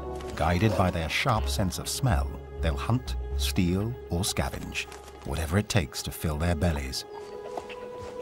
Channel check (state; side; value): identical; both; correlation 1.00